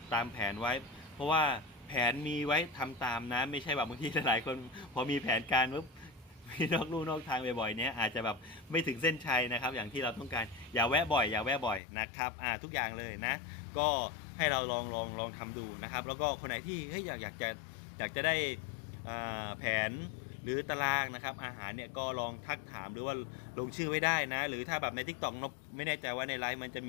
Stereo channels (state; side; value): drops out; right; at 11.8 s